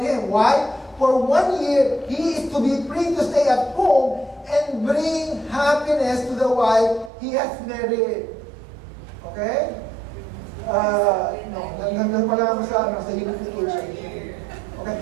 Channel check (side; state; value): left; drops out; at 7.1 s